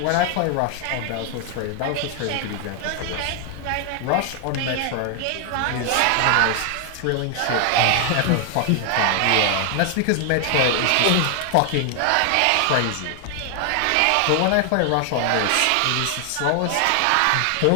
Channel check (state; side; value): different; both; correlation 0.00